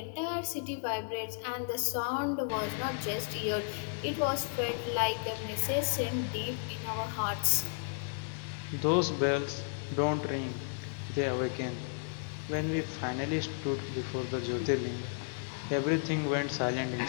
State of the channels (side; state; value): right; silent; digital silence